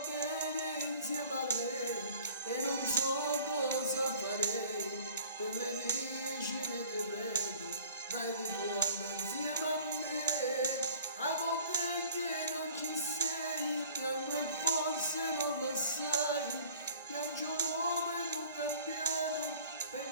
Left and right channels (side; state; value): both; inverted; correlation -0.49